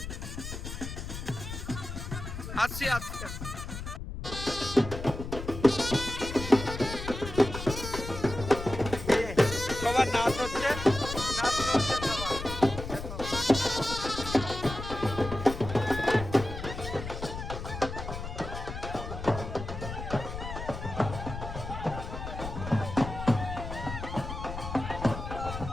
আসছি আসছি। সবার নাচ হচ্ছে, নাচ হচ্ছে সবার।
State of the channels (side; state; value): left; noise; rumble, 7 dB below the sound